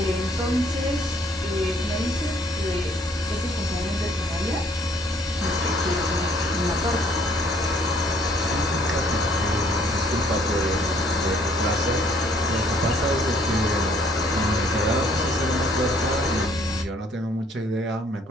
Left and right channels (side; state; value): both; normal; correlation 0.62